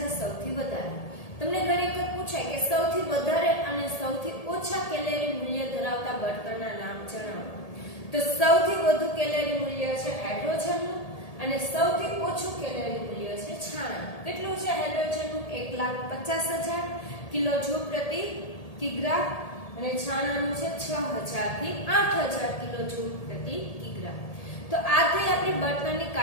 સૌથી વધારે. તમને ઘણી વખત પૂછાય કે સૌથી વધારે અને સૌથી ઓછા કેલેરી મૂલ્ય ધરાવતા બળતણના નામ જણાવો. તો સૌથી વધુ કેલેરી મૂલ્ય છે હાઇડ્રોજનનું અને સૌથી ઓછું કેલેરી મૂલ્ય છે છાણાનું. કેટલું છે હાઇડ્રોજનનું? 1,50,000 કિલોજૂલ પ્રતિ કિગ્રા અને છાણાનું છે 6000 થી 8000 કિલોજૂલ પ્રતિ કિગ્રા. તો આ થઈ આપણી બળતણની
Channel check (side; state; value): right; late; 1.8 ms